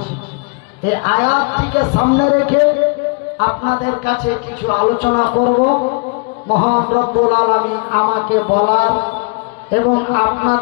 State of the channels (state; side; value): quieter; right; 32.5 dB